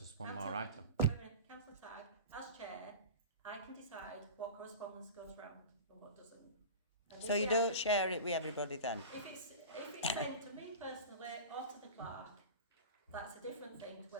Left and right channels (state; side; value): inverted; both; correlation -0.31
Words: one Councillor- more item. Wait a minute, Councillor Tagg, as chair, I can decide decide what correspondence goes round and what doesn't. And So if you we have don't to- share it with everybody then? If it's sent to me personally or to the clerk, that's a different thing to